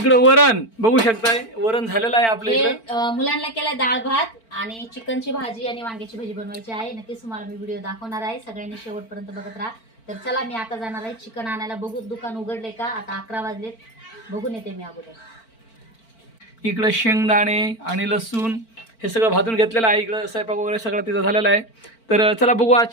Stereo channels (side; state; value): right; late; 4.4 ms